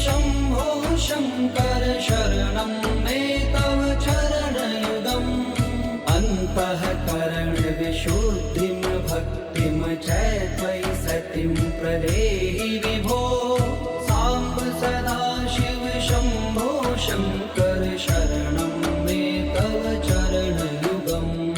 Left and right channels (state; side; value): identical; both; correlation 1.00